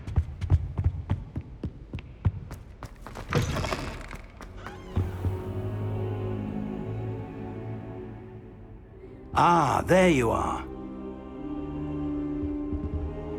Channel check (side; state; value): both; identical; correlation 1.00